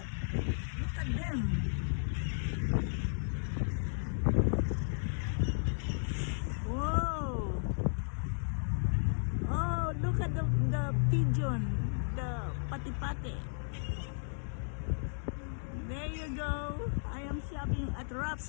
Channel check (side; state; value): right; silent; digital silence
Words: Look at them. Whoa. Oh, look at the pigeon. The pati-pati. There you go. I am shopping at